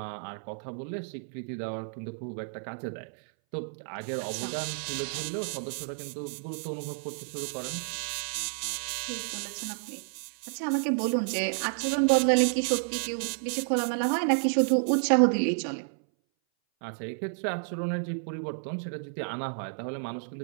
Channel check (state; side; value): silent; left; 57 dB below the other